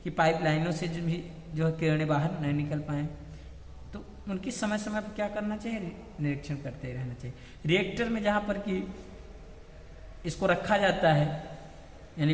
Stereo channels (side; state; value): both; identical; correlation 1.00